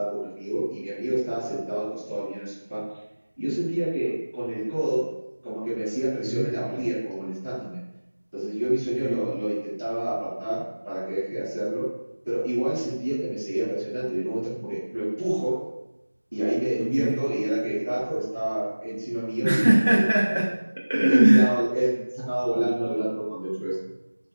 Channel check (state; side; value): inverted; both; correlation -1.00